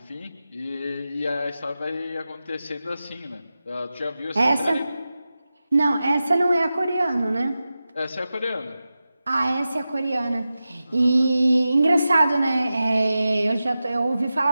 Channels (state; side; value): inverted; both; correlation -0.93